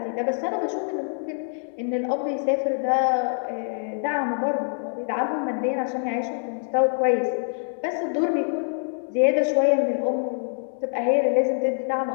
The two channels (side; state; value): right; silent; digital silence